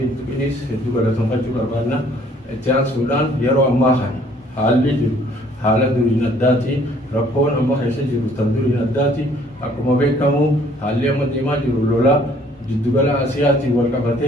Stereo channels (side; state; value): both; normal; correlation 0.60